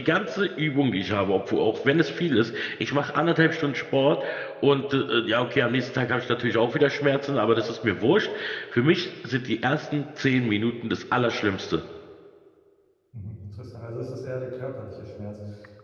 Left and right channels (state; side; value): identical; both; correlation 1.00